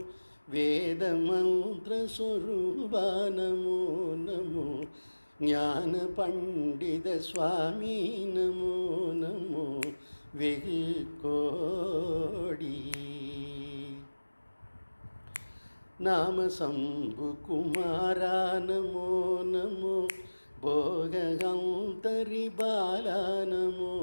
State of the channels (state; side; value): inverted; both; correlation -1.00